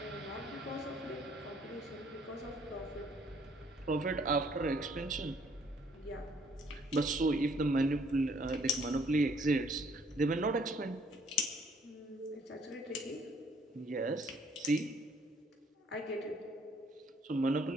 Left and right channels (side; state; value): both; normal; correlation 0.63